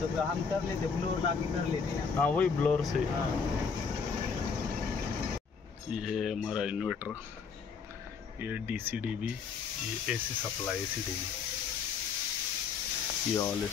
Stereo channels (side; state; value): right; quieter; 5.8 dB